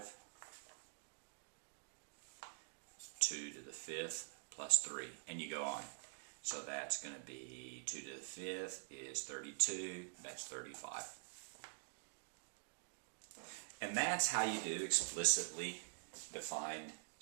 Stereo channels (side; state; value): left; silent; digital silence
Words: 2 to the 5th plus 3, and you go on. So that's going to be 2 to the 5th is 32, that's 35. And that's how you do explicitly defined